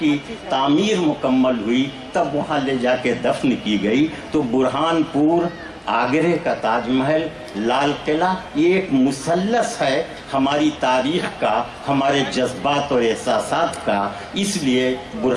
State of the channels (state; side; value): identical; both; correlation 1.00